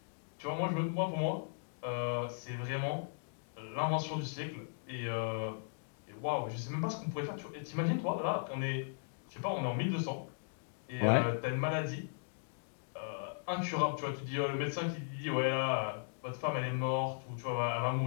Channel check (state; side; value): silent; right; digital silence